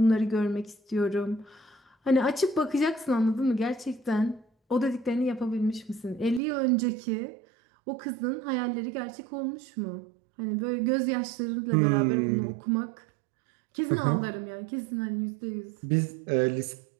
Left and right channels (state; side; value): drops out; left; at 6.4 s